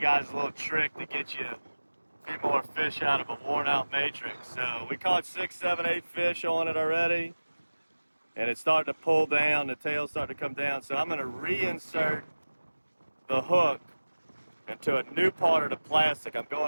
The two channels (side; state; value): both; inverted; correlation -1.00